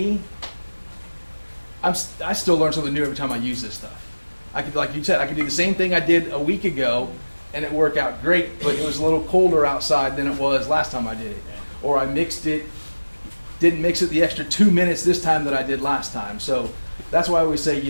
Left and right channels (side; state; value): both; inverted; correlation -1.00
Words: I still learn something new every time I use this stuff. I could, like you said, I could do the same thing I did a week ago and it worked out great, but it was a little colder outside than it was last time I did it. Or I mixed it, didn't mix it the extra 2 minutes this time that I did last time. So that's why I always say,